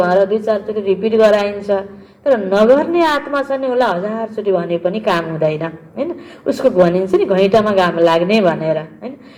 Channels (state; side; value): identical; both; correlation 1.00